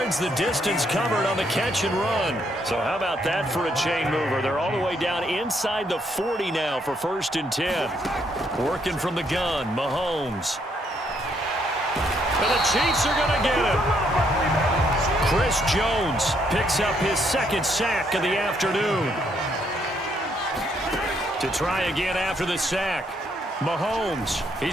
the distance covered on the catch and run. So how about that for a chain mover? They're all the way down inside the 40 now for 1st and 10. Working from the gun, Mahomes. And the Chiefs are going to get him. Chris Jones picks up his 2nd sack of the afternoon. To try again after the sack. Mahomes,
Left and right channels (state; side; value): normal; both; correlation 0.72